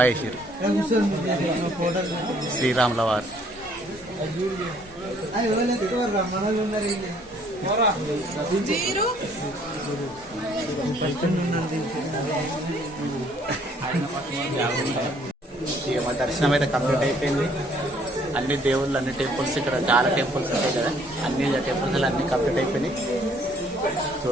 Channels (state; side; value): normal; both; correlation 0.62